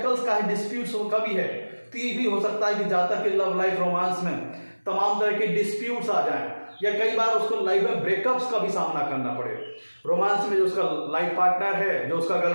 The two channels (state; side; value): inverted; both; correlation -1.00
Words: का है, डिस्प्यूट्स का भी है, तो ये भी हो सकता है कि जातक के लव लाइफ रोमांस में तमाम तरह के डिस्प्यूट्स आ जाएं या कई बार उसको लाइफ में ब्रेकअप्स का भी सामना करना पड़े। रोमांस में जो उसका लाइफ पार्टनर है, जो उसका